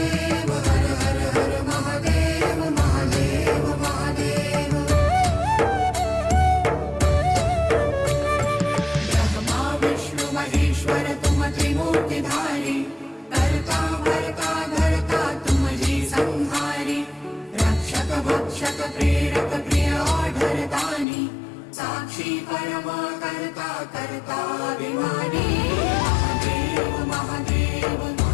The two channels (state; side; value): drops out; right; at 21.1 s